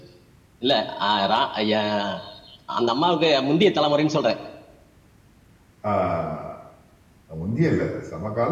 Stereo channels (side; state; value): both; identical; correlation 1.00